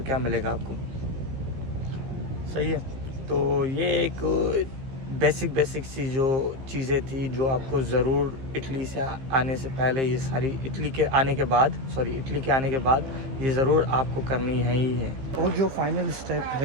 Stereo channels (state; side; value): late; left; 15 ms